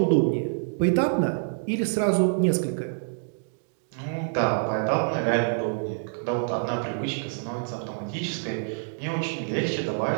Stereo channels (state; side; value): silent; left; digital silence